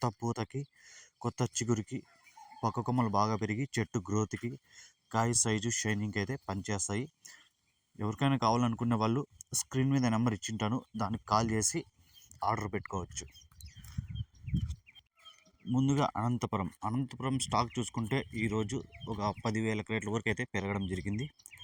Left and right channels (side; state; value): both; identical; correlation 1.00